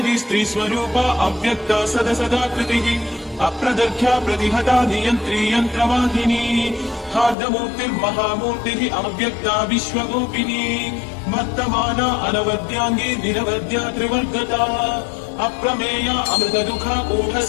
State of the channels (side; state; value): right; drops out; at 7.4 s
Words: स्त्रीस्वरूपा अव्यक्ता सदसदाकृतिः अप्रदर्घ्या प्रतिहता नियन्त्री यन्त्रवाहिनी हार्दमूर्तिर्महामूर्तिः अव्यक्ता विश्वगोपिनी वर्तमाना अनवद्याङ्गी निरवद्या त्रिवर्गता अप्रमेया अमृतदुःखा